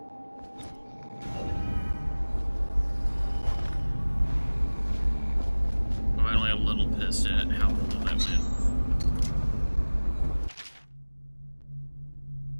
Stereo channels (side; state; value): both; inverted; correlation -1.00